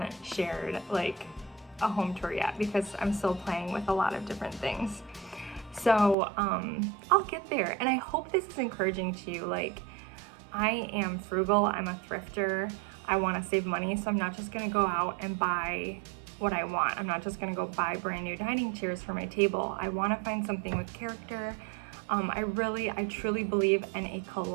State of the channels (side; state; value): left; drops out; at 6.2 s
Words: shared like a home tour yet, because I'm still playing with a lot of different things. So I'll get there, and I hope this is encouraging to you. Like, I am frugal, I'm a thrifter, I want to save money, so I'm not just gonna go out and buy what I want. I'm not just gonna go buy brand new dining chairs for my table. I want to find something with character. I truly believe in a